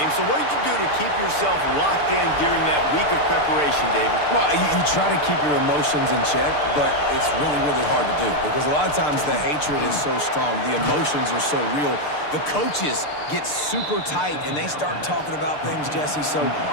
so what did you do to keep yourself locked in during that week of preparation, David? Well, you try to keep your emotions in check, but it's really, really hard to do because a lot of times the hatred is so strong. The emotions are so real. The coaches get super tight, and they start talking about things, Jesse, so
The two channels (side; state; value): right; late; 6.7 ms